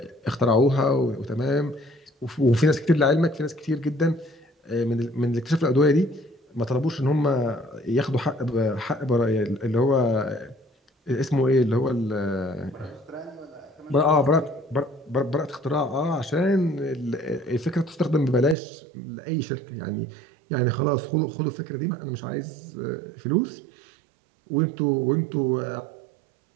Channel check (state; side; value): drops out; left; at 18.6 s